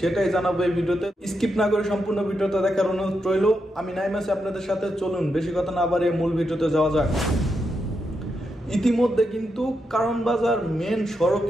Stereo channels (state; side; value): normal; both; correlation 0.84